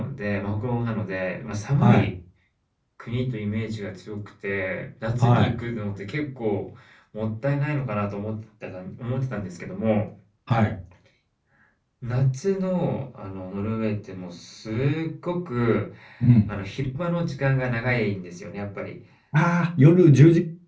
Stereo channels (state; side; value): identical; both; correlation 1.00